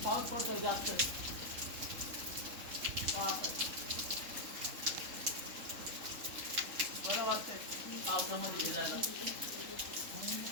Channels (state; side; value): late; left; 3.7 ms